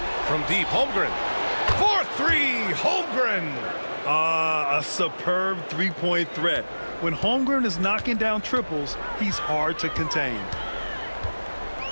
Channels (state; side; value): inverted; both; correlation -1.00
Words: from deep. Holmgren. 4-3. Holmgren. A superb three-point threat. When Holmgren is knocking down triples, he's hard to contain.